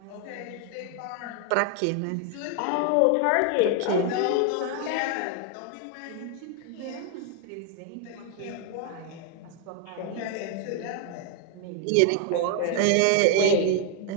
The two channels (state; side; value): different; both; correlation 0.01